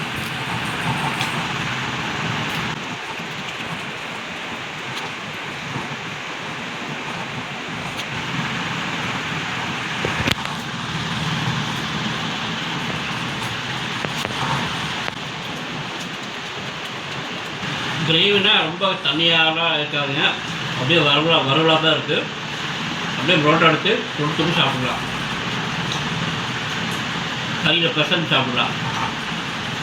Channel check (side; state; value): both; identical; correlation 1.00